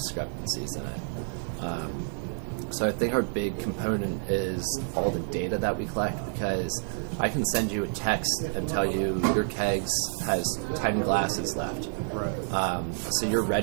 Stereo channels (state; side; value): silent; left; 59 dB below the other